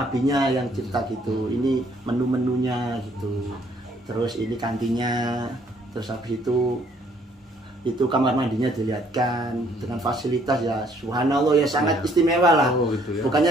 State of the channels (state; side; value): normal; both; correlation 0.64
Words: yang cipta gitu, ini menu-menunya gitu, terus ini kantinnya, terus habis itu kamar mandinya dilihatkan dengan fasilitas ya subhanallah ya, sangat istimewa lah. Gitu ya.